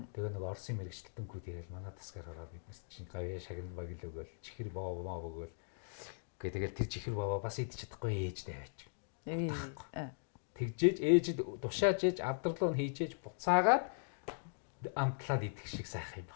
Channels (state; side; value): silent; right; digital silence